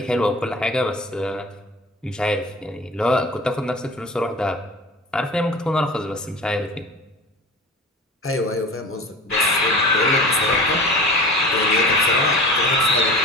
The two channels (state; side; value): normal; both; correlation 0.37